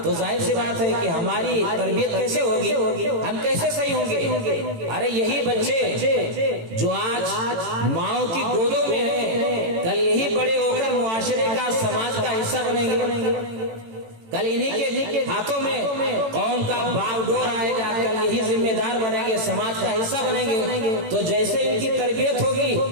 تو ظاہر سی بات ہے کہ ہماری تربیت کیسے ہوگی، ہم کیسے صحیح ہوں گے؟ ارے یہی بچے جو آج ماؤں کی گودوں میں ہیں، کل یہی بڑے ہو کر معاشرے کا، سماج کا حصہ بنیں گے، کل انہی کے ہاتھوں میں قوم کا باغ ڈور آئے گا، کل یہی ذمہ دار بنیں گے، سماج کا حصہ بنیں گے، تو جیسے ان کی تربیت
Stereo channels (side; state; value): left; late; 18 ms